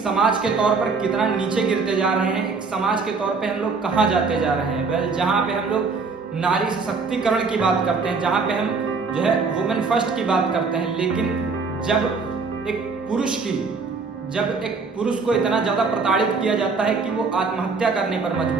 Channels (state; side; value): quieter; left; 4.5 dB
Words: के तौर पर कितना नीचे गिरते जा रहे हैं, एक समाज के तौर पे हम लोग कहाँ जाते जा रहे हैं। जहाँ पे हम लोग नारी सशक्तिकरण की बात करते हैं, जहाँ पे हम जो है वुमेन फर्स्ट की बात करते हैं, लेकिन जब एक पुरुष को इतना ज्यादा प्रताड़ित किया जाता है कि वो आत्महत्या करने पर